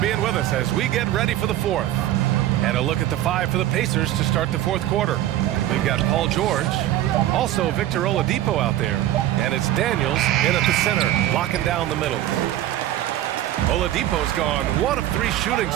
with us as we get ready for the 4th. And a look at the 5 for the Pacers to start the 4th quarter. We've got Paul George, also Victor Oladipo out there, and it's Daniels in at the center, locking down the middle. Oladipo's gone 1 of 3 shooting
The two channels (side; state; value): left; quieter; 13.4 dB